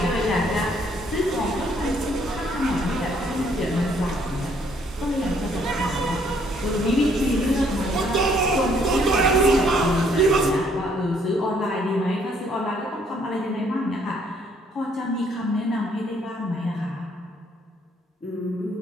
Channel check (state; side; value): normal; both; correlation 0.66